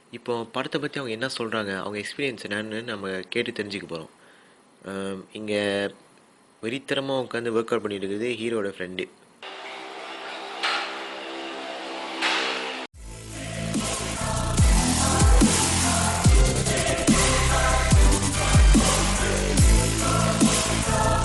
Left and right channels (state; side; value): identical; both; correlation 1.00